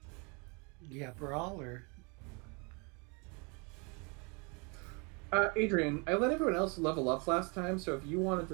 yeah, brawl or Adrian, I let everyone else level up last time, so if you wanted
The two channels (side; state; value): left; quieter; 32.0 dB